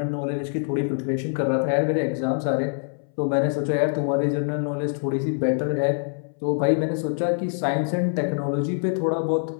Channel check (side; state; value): right; silent; 62 dB below the other